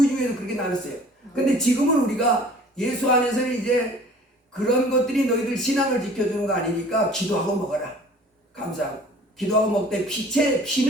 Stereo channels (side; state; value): both; normal; correlation 0.49